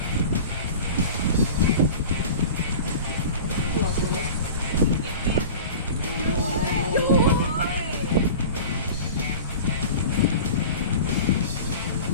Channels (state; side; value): inverted; both; correlation -0.36